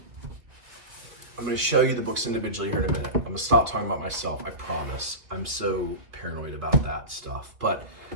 to show you the books individually here in a minute. I'm going to stop talking about myself, I promise. I'm so paranoid about that stuff. But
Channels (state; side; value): late; left; 2.5 ms